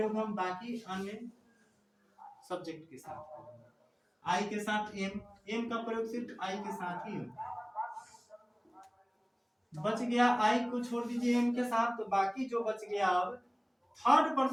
हम बाकी अन्य सब्जेक्ट के साथ करेंगे। आई के साथ एम, एम का प्रयोग सिर्फ आई के साथ ही होता है। बच गया आई को छोड़ दीजिए एम के साथ, तो बाकी जो बच गया अब थर्ड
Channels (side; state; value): both; identical; correlation 1.00